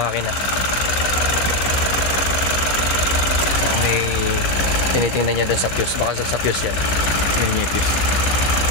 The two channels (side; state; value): right; late; 16 ms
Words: May tinitingnan niya doon sa fuse. Baka sa fuse yan. Yun yung fuse.